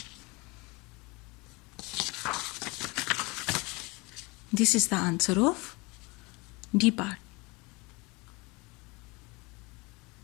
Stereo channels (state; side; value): quieter; right; 26.1 dB